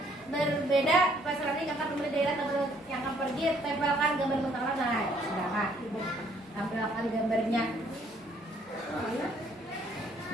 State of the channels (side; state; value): both; normal; correlation 0.64